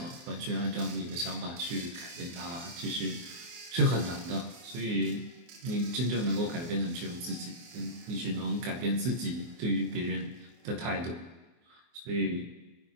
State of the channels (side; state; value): left; late; 24 ms